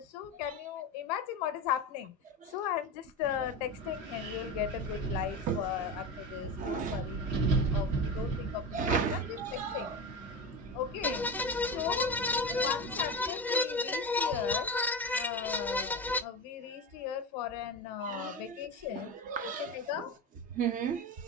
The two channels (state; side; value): normal; both; correlation 0.22